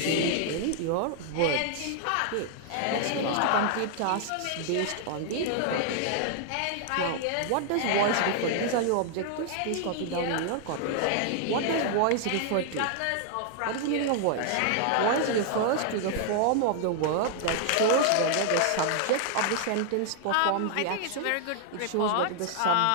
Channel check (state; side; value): different; both; correlation -0.01